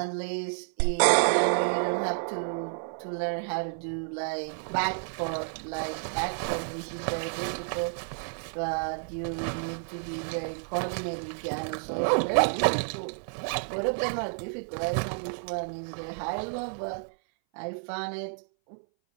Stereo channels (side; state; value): left; silent; 58 dB below the other